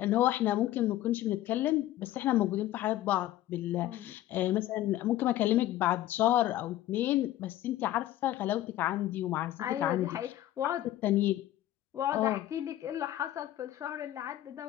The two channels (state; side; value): quieter; right; 14.1 dB